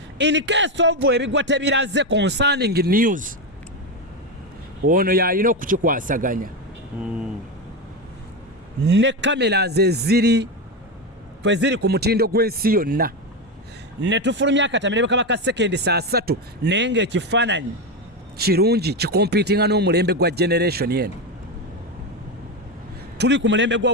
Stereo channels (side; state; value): both; normal; correlation 0.13